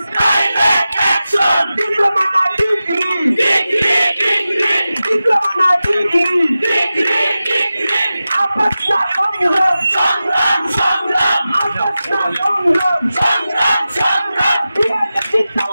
action. Diploma na degree, diploma na degree. Apat na সংগ্রাম, apat na সংগ্রাম.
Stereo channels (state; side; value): inverted; both; correlation -0.94